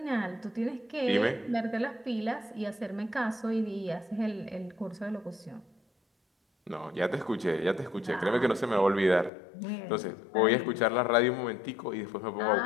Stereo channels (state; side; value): drops out; right; at 9.3 s